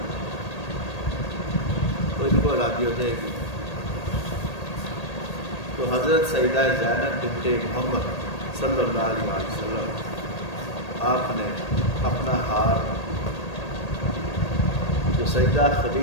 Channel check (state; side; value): late; right; 1.8 ms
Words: تو ان کو آزادی ہو جائے گی۔ تو حضرت سیدہ زینب بنت محمد صلی اللہ علیہ وسلم آپ نے اپنا ہار جو سیدہ